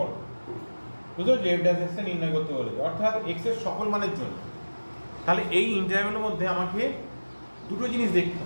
বুঝছো? যে f ড্যাশ x এ নির্ণয় করতে বলেছে, অর্থাৎ x এর সকল মানের জন্য। তাহলে এই ইন্টারভ্যালের মধ্যে আমাকে দুটো জিনিস দেখতে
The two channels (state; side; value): inverted; both; correlation -1.00